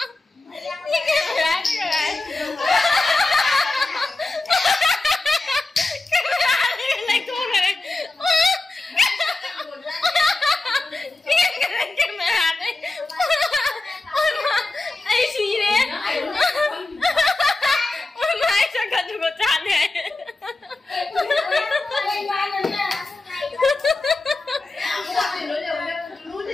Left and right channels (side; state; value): right; quieter; 3.1 dB